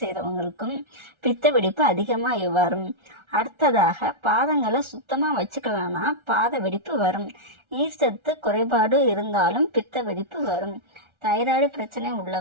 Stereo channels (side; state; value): left; late; 1.4 ms